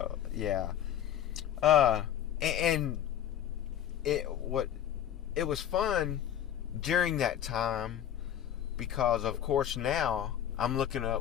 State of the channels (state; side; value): quieter; right; 10.5 dB